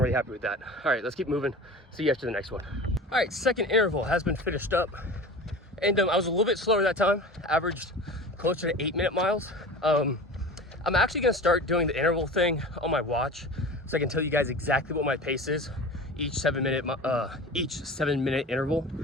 really happy with that. All right, let's keep moving. See you after the next one. All right, second interval has been finished up. And I was a little bit slower that time, averaged closer to 8-minute miles. I'm actually gonna start doing the interval thing on my watch so I can tell you guys exactly what my pace is each 7-minute interval.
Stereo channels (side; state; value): both; normal; correlation 0.35